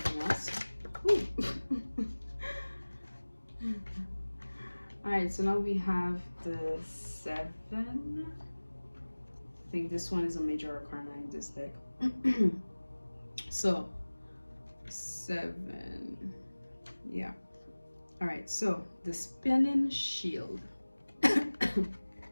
else? All right, so now we have the 7. I think this one is a major arcana in this deck. So 7, yeah. All right, so the spinning shield.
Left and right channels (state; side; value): inverted; both; correlation -1.00